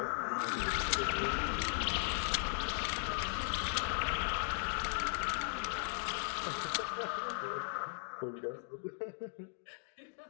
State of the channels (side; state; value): right; silent; digital silence